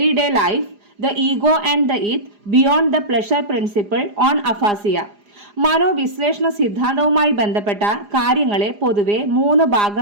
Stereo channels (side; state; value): left; late; 4.9 ms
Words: life. The ego and the it. Beyond the pleasure principle. On aphasia. മനോവിശ്ലേഷണ സിദ്ധാന്തവുമായി ബന്ധപ്പെട്ട കാര്യങ്ങളെ പൊതുവെ 3